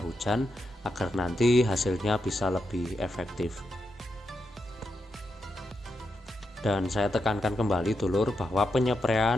hujan agar nanti hasilnya bisa lebih efektif. Dan saya tekankan kembali dulur bahwa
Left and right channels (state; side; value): normal; both; correlation 0.85